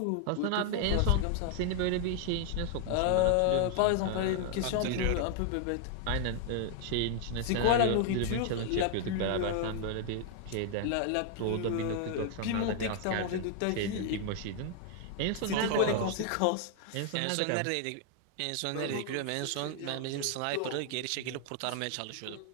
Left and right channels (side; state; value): both; different; correlation 0.00